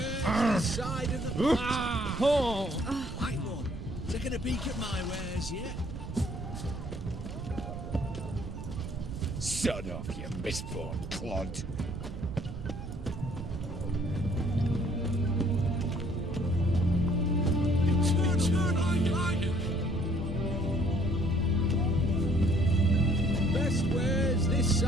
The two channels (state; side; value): noise; right; rumble, 8 dB below the sound